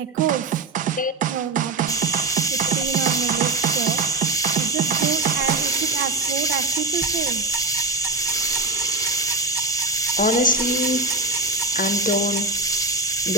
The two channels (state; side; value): quieter; left; 3.2 dB